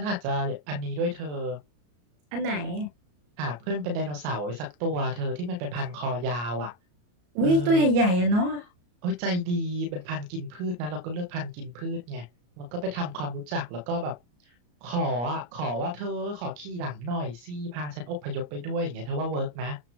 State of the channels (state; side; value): late; left; 34 ms